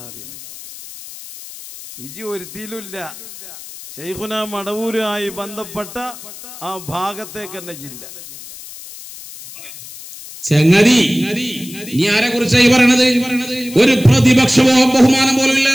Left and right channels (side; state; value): left; noise; hiss, 15 dB below the sound